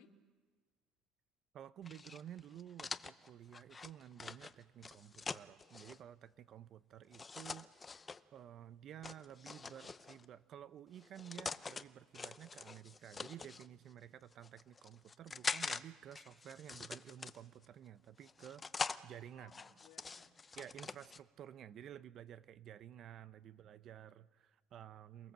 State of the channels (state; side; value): normal; both; correlation 0.81